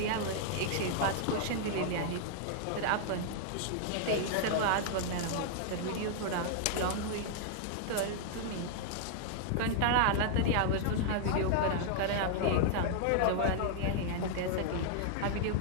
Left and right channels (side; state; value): both; different; correlation -0.01